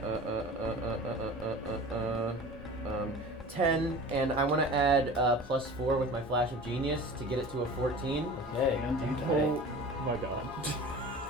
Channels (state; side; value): normal; both; correlation 0.38